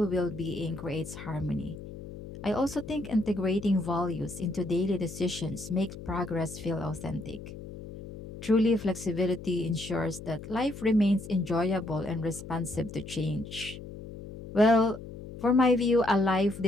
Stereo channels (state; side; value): noise; left; hum, 12 dB below the sound